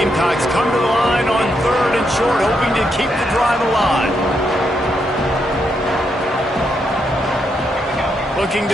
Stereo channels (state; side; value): normal; both; correlation 0.80